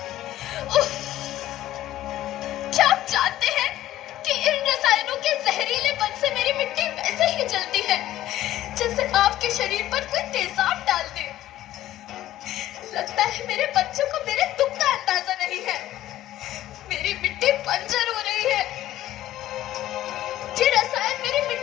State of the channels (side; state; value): right; quieter; 14.0 dB